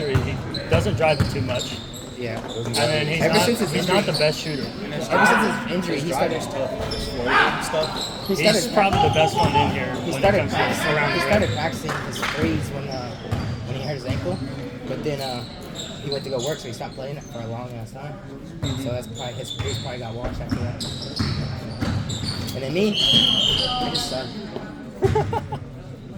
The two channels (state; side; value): identical; both; correlation 1.00